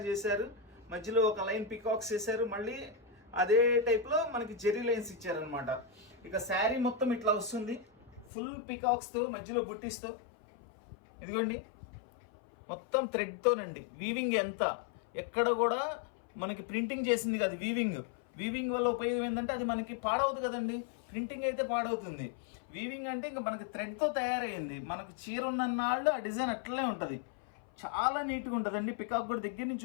చేశారు. మధ్యలో ఒక లైన్ పికాక్స్ వేశారు, మళ్ళీ అదే టైప్లో మనకి జెరీ లైన్స్ ఇచ్చారనమాట. ఇక శారీ మొత్తం ఇట్లా వస్తుంది, ఫుల్ పికాక్స్తో మధ్యలో బుట్టిస్తో. ఇదిగోండి మొత్తం థ్రెడ్తోనండి. వీవింగ్ ఎంత ఎక్కడ కూడా మనకి ప్రింటింగ్ చేసింది కాదు, వీవింగ్ వల్ల ఉపయోగం ఏంటంటే అది మనకి పాడవద్దు కదండి. ప్రింటింగ్ అయితే పాడవుతుంది. వీవింగ్ అంటే ఇంకా మనకి థ్రెడ్తో తయారైంది. మనకి చీర ఉన్నన్నాళ్ళు ఆ డిజైన్ అట్లనే ఉంటుంది. చాలా నీట్గా ఉంటుందండి. పికాక్ కూడా దగ్గర నుంచి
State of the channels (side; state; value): right; drops out; at 8.3 s